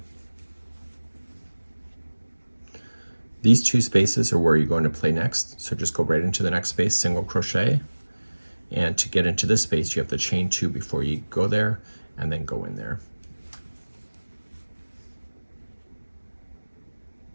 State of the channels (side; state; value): both; inverted; correlation -1.00